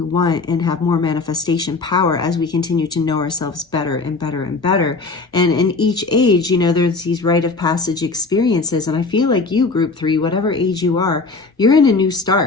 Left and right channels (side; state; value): right; quieter; 3.9 dB